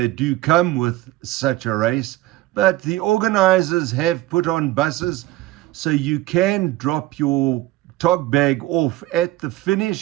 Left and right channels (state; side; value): quieter; left; 16.9 dB